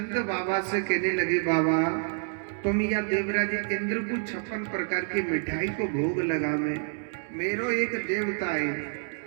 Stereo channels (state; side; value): silent; left; 57 dB below the other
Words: बाबा से कहने लगे बाबा तुम या देवराज इंद्र को 56 प्रकार की मिठाई को भोग लगा में मेरो एक देवता है